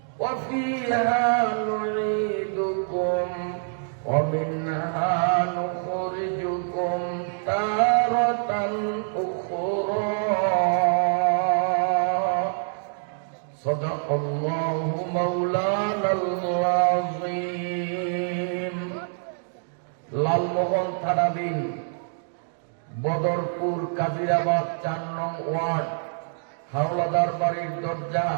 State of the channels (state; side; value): silent; left; digital silence